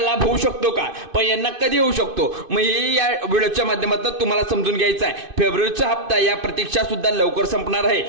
होऊ शकतो का, पण यांना कधी होऊ शकतो, मग हे या व्हिडिओच्या माध्यमातून तुम्हाला समजून घ्यायचं आहे। फेब्रुवारीचा हप्ता या प्रतीक्षा सुद्धा लवकर संपणार आहे,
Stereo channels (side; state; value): left; late; 2.5 ms